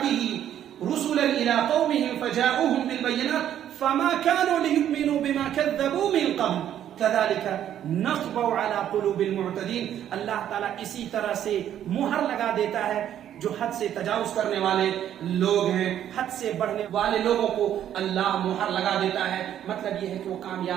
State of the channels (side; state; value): left; quieter; 10.6 dB